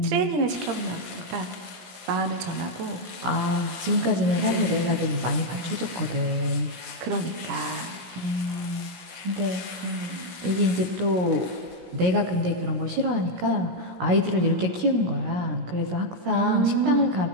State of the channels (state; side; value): late; left; 16 ms